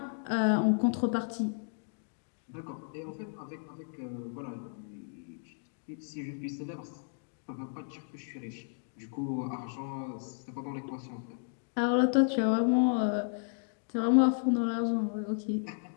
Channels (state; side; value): silent; right; digital silence